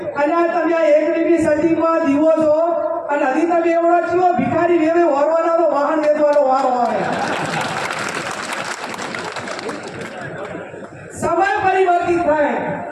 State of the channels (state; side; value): identical; both; correlation 1.00